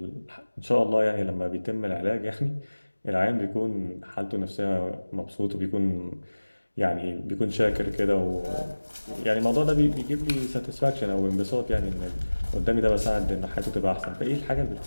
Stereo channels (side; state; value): both; inverted; correlation -1.00